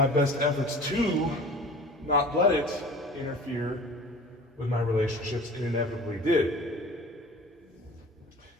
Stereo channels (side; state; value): both; normal; correlation 0.41